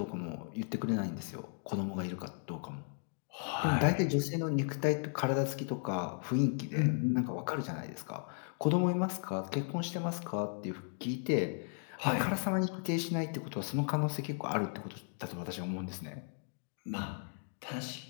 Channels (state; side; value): silent; right; 54 dB below the other